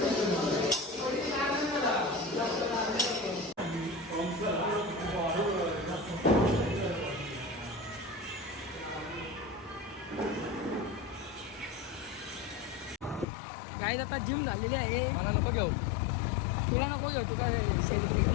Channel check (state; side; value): drops out; right; at 13.2 s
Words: काय आता जिम झालेली आहे. मला नको घेऊ. तुला नको घेऊ तुका सेलिब्रेट